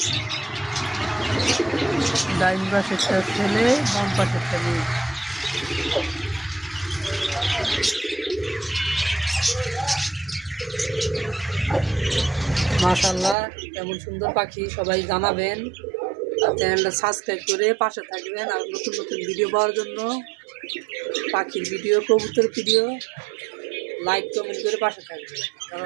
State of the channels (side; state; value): left; drops out; at 13.4 s